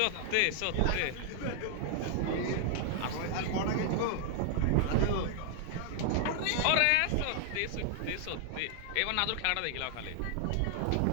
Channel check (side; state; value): both; different; correlation 0.00